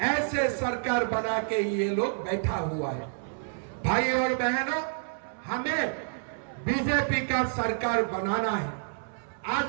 ऐसे सरकार बना के ये लोग बैठा हुआ है। भाई और बहनों, हमें बीजेपी का सरकार बनाना है।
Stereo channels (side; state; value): left; silent; 59 dB below the other